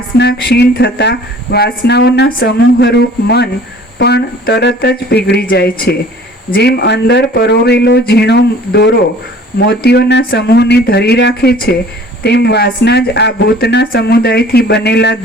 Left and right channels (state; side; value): normal; both; correlation 0.49